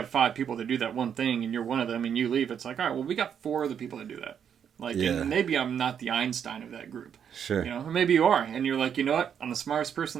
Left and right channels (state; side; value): quieter; left; 8.1 dB